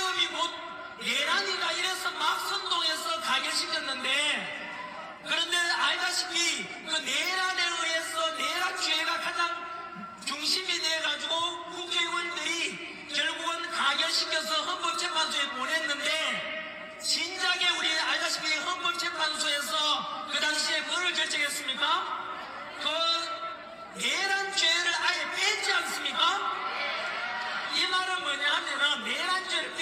곧 내란이다 이래서 막 선동해서 가결시켰는데 그런데 알다시피 그 내란에 의해서 내란죄가 가장 중심이 돼가지고 국회의원들이 결국은 가결시켜서 헌법재판소에 보냈는데 진작에 우리 알다시피 헌법재판소에서 그 당시에 뭐를 결정했습니까? 그 내란죄를 아예 뺐지 않습니까? 이 말은 뭐냐 하면은 내란죄를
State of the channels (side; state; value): both; identical; correlation 1.00